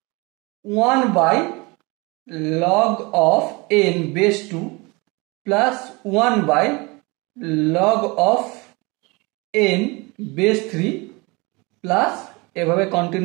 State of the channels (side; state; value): left; quieter; 26.2 dB